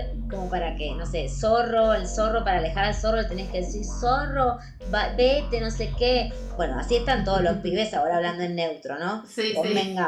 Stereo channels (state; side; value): identical; both; correlation 1.00